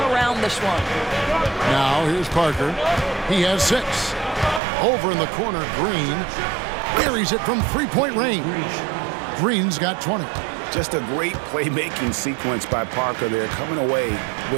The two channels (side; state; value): left; drops out; at 4.6 s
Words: around this one. Now here's Parker. He has 6. Over in the corner, Green buries it from three-point range. Green's got 20. Just a great playmaking sequence by Parker there, coming away